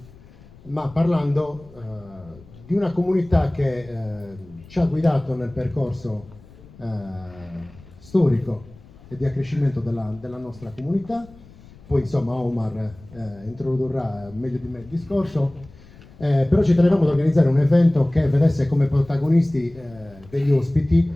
ma parlando di una comunità che ci ha guidato nel percorso storico e di accrescimento della nostra comunità. Poi insomma Omar introdurrà meglio di me il discorso, però ci tenevamo ad organizzare un evento che vedesse come protagonisti degli ospiti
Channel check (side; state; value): left; noise; rumble, 22 dB below the sound